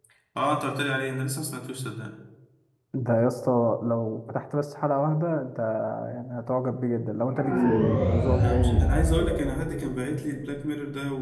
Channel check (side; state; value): both; identical; correlation 1.00